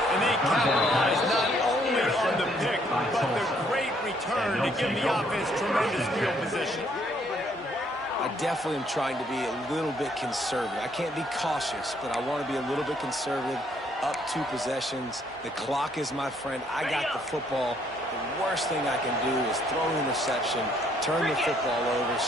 they capitalize not only on the pick, but the great return to give the offense tremendous field position. I definitely am trying to be a little bit conservative. I can't be cautious, but I want to be a little bit conservative. Up 2 possessions. The clock is my friend. I got the football. The worst thing I can do is throw an interception, turn the football over,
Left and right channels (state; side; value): normal; both; correlation 0.68